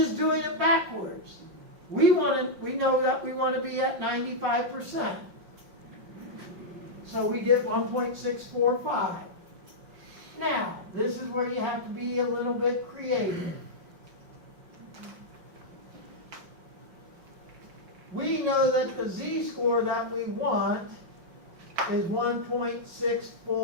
doing it backwards. we know that we want to be at 95%. So we did 1.645. Now, this is where you have to be a little bit creative. We know that the z-score that we want is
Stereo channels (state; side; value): late; left; 5.5 ms